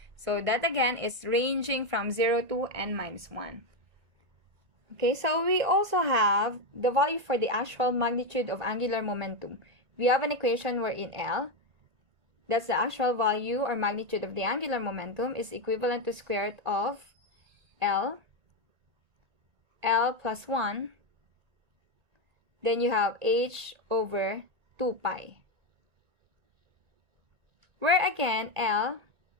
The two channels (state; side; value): late; left; 1.9 ms